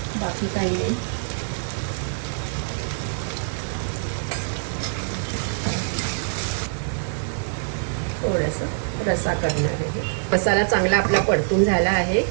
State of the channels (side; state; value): left; silent; digital silence